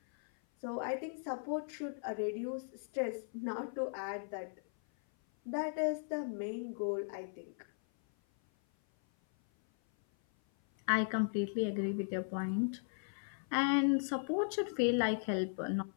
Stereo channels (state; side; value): silent; right; 53 dB below the other